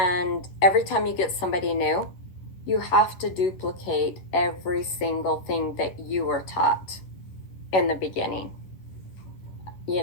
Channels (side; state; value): right; late; 11 ms